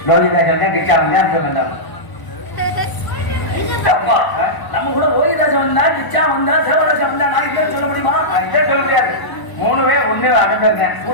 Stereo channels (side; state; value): right; late; 1.0 ms